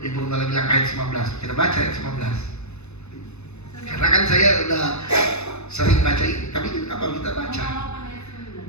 malah bilang ayat 19. Kita baca ayat 19. Karena kan saya udah sering baca ini, tapi apa kita baca?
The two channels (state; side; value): late; right; 0.81 ms